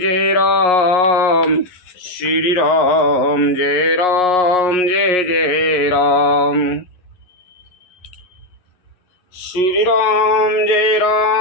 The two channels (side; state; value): right; late; 11 ms